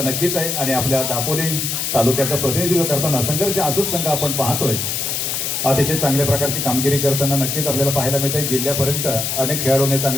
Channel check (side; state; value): left; noise; hiss, 1 dB below the sound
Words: नक्कीच आहे आणि आपल्या दापोली तालुक्याचं प्रतिनिधित्व करताना संघर्ष आसूद संघ आपण पाहतोय. अतिशय चांगल्या प्रकारची कामगिरी करताना नक्कीच आपल्याला पाहायला मिळत आहे. जिल्ह्यापर्यंत अनेक खेळाडूंनी